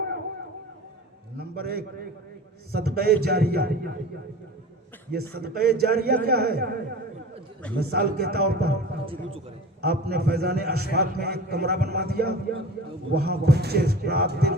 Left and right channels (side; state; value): both; normal; correlation 0.37